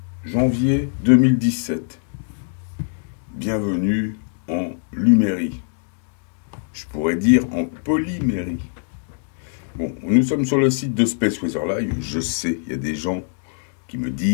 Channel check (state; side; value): silent; right; digital silence